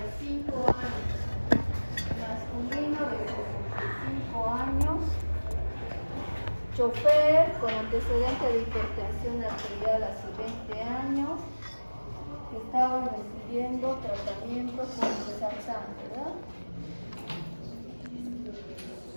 años, masculino de 65 años, chofer con antecedente de hipertensión arterial hace 20 años, estaba recibiendo tratamiento con Losartan, ¿verdad?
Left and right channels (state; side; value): inverted; both; correlation -1.00